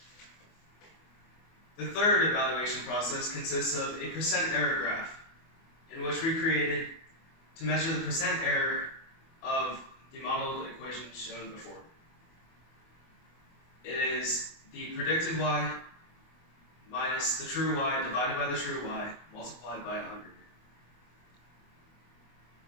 The third evaluation process consists of a percent error graph, in which we created to measure the percent error of the modeled equation shown before. It is the predicted y minus the true y divided by the true y multiplied by 100.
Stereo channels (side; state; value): right; late; 24 ms